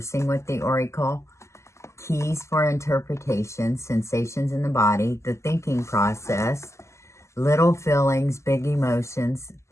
with the oracle, keys for interpretation, sensations in the body, the thinking process, little feelings, big emotions,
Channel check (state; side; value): late; right; 0.13 ms